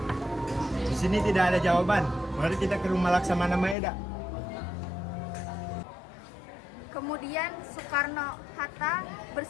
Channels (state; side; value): drops out; right; at 3.8 s